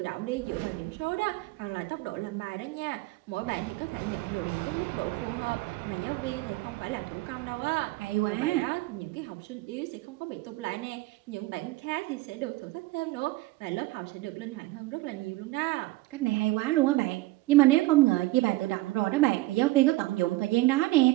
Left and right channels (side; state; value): left; quieter; 19.4 dB